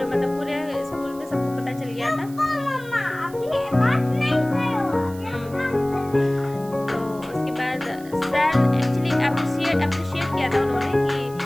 पूरे स्कूल में सबको पता चल गया था। तो उसके बाद सर एक्चुअली अप्रिशिएट किया था उन्होंने कि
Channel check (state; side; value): noise; right; hiss, 21 dB below the sound